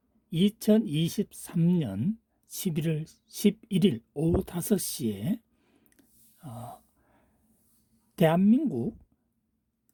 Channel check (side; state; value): both; identical; correlation 1.00